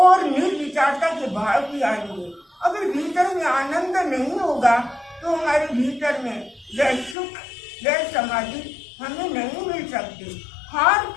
निर्विचारता के भाव भी आएंगे। अगर भीतर में आनंद नहीं होगा तो हमारे भीतर में वह सुख वह समाधि हमें नहीं मिल सकती। हर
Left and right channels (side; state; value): right; drops out; at 7.2 s